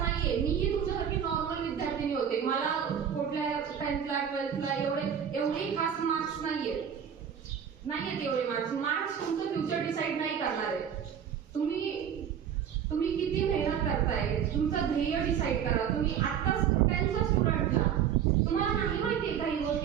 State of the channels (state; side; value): quieter; left; 8.5 dB